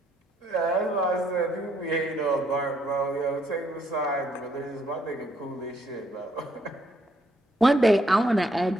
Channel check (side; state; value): both; normal; correlation 0.71